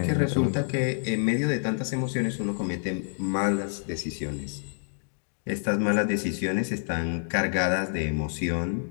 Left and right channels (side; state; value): right; silent; digital silence